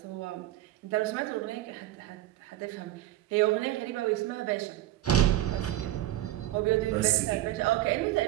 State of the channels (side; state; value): left; quieter; 14.5 dB